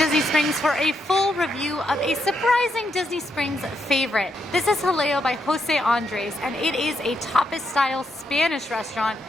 Springs for a full review of a surprising Disney Springs favorite. This is Jaleo by Jose Andres, and it is a tapas-style Spanish restaurant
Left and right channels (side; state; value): both; normal; correlation 0.80